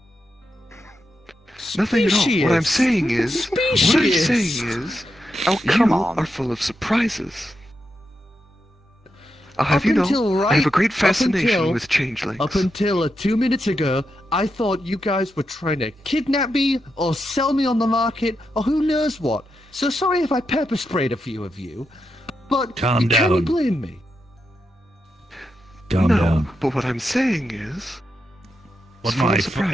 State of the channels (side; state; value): both; normal; correlation 0.86